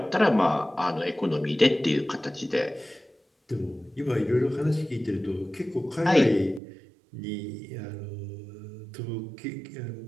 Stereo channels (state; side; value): drops out; left; at 6.6 s